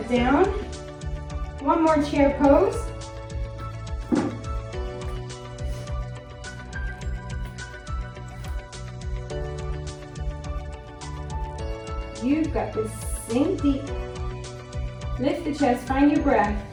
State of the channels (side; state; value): both; identical; correlation 1.00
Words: down. One more chair pose. You've got this. Sink deep. Lift the chest, find your breath.